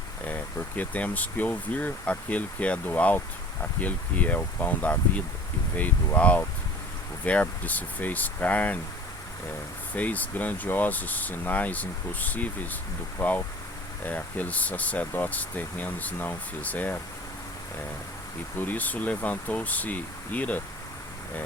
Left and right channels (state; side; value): normal; both; correlation 0.45